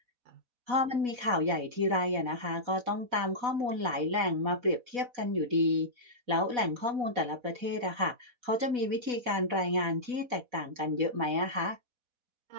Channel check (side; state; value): left; late; 4.1 ms